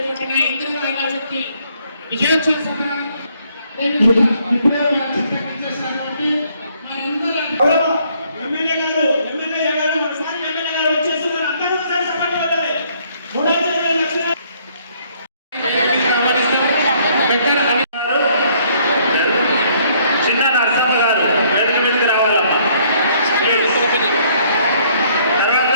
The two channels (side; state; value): both; inverted; correlation -0.65